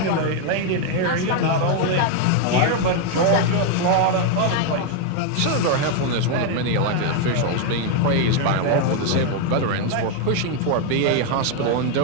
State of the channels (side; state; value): both; different; correlation 0.01